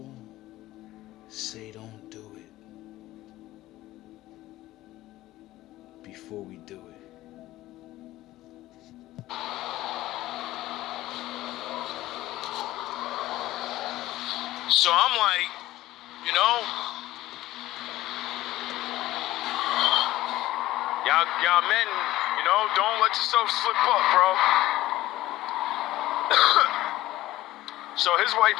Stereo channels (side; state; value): right; quieter; 16.2 dB